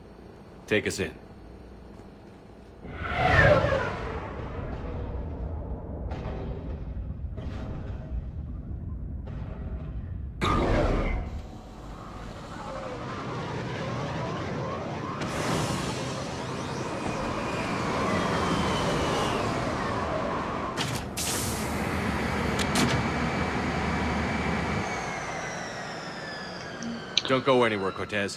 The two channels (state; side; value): identical; both; correlation 1.00